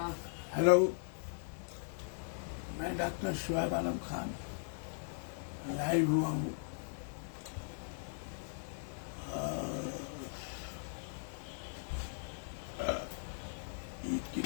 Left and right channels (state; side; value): silent; right; digital silence